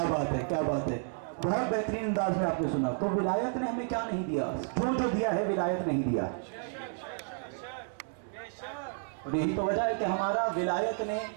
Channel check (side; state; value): left; silent; 57 dB below the other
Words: بات ہے, کیا بات ہے. بہت بہترین انداز میں آپ نے سنا. تو ولایت نے ہمیں کیا نہیں دیا؟ جو دیا ہے ولایت نہیں دیا. اور یہی تو وجہ ہے کہ ہمارا ولایت نے